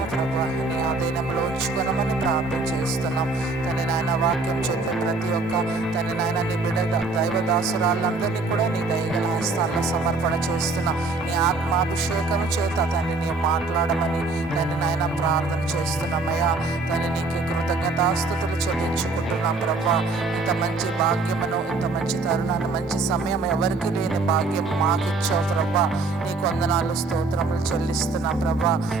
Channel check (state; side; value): quieter; left; 3.6 dB